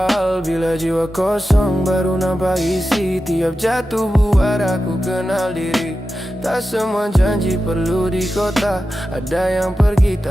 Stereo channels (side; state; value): both; normal; correlation 0.92